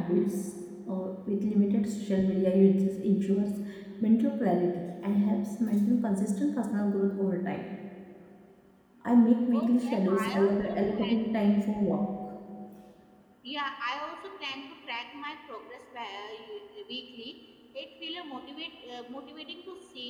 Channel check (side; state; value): both; identical; correlation 1.00